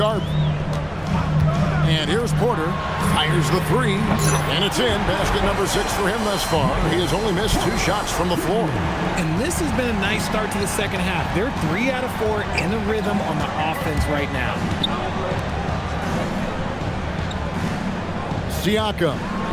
And here's Porter. Fires the three. And it's in. Basket number 6 for him thus far. He has only missed 2 shots from the floor. And this has been a nice start to the second half. They're 3 out of 4 in a rhythm on the offense right now. Siakam,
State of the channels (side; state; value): both; identical; correlation 1.00